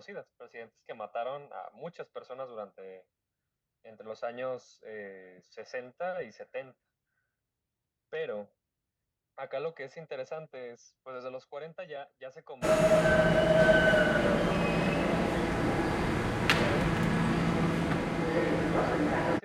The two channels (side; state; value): both; identical; correlation 1.00